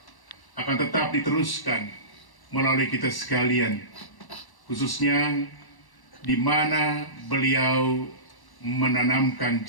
akan tetap diteruskan melalui kita sekalian, khususnya di mana beliau menanamkan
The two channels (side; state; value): right; late; 1.1 ms